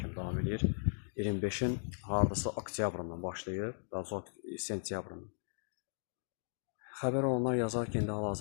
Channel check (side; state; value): right; silent; digital silence